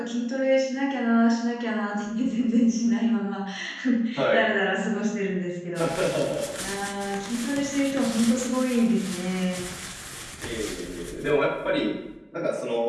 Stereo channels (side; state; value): both; identical; correlation 1.00